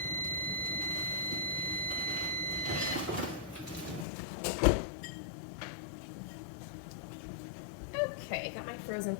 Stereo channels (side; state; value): right; drops out; at 4.0 s